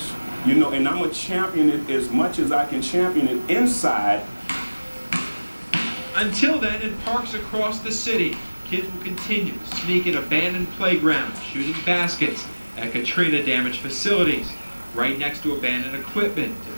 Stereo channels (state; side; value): inverted; both; correlation -1.00